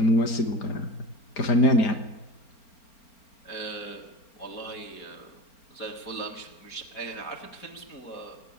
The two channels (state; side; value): late; right; 4.4 ms